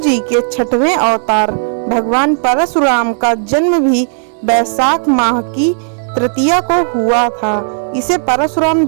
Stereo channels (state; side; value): silent; left; digital silence